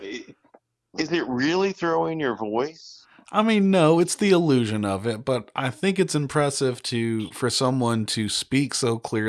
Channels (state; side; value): identical; both; correlation 1.00